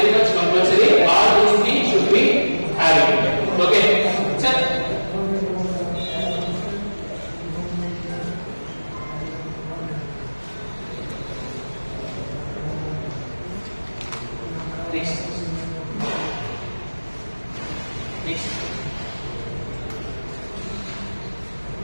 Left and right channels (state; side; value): inverted; both; correlation -1.00